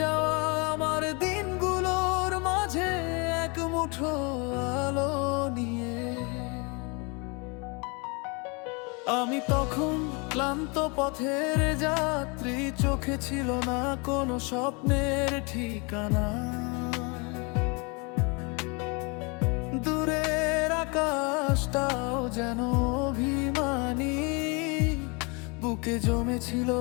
আমার দিনগুলোর মাঝে এক মুঠো আলো নিয়ে। আমি তখন ক্লান্ত পথের যাত্রী, চোখে ছিল না কোনো স্বপ্নের ঠিকানা। দূরের আকাশটাও যেন অভিমানী, বুকে জমেছিল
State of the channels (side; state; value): right; quieter; 30.7 dB